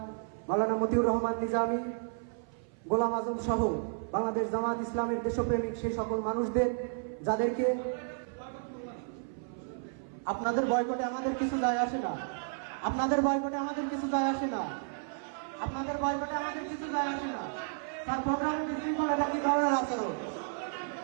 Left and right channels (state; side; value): silent; left; 56 dB below the other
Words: মাওলানা মতিউর রহমান নিজামী, গোলাম আজম সহ বাংলাদেশ জামাত ইসলামের দেশপ্রেমিক সেই সকল মানুষদের, যাদেরকে আপনাদের বয়কটে আমাদের কিছু যায় আসে না, আপনাদের বয়কটে আমাদের কিছু যায় আসে না, আপনাদের বয়কটে আমাদের কিছু যায় আসে না। স্যার প্রোগ্রাম বিশৃঙ্খলা, এটা কি ধরনের আচরণ?